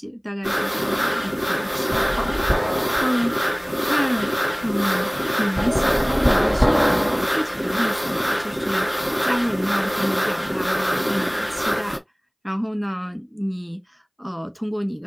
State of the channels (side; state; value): both; identical; correlation 1.00